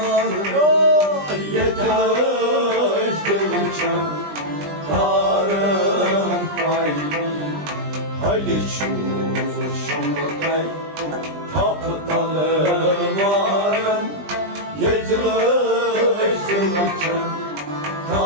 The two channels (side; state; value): left; late; 20 ms